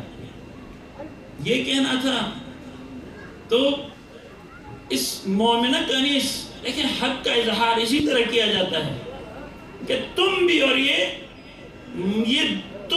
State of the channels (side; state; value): both; identical; correlation 1.00